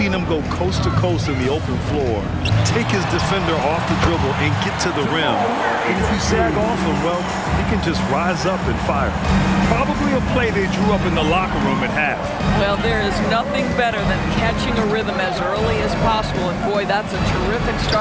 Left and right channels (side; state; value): both; identical; correlation 1.00